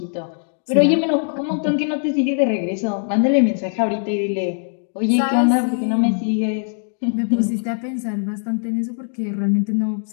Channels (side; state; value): right; silent; digital silence